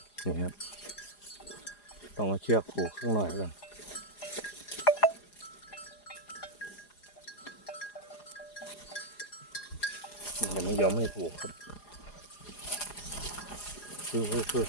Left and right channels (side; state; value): right; late; 4.9 ms